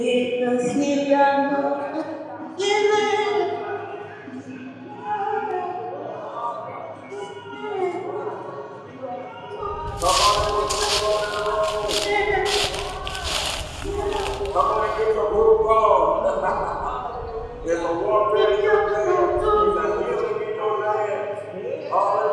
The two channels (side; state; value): both; identical; correlation 1.00